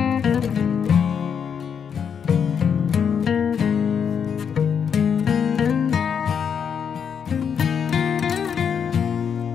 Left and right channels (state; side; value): quieter; right; 7.3 dB